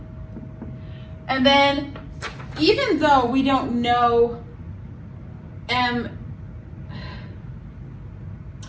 And then even though we don't know and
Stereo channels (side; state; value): both; identical; correlation 1.00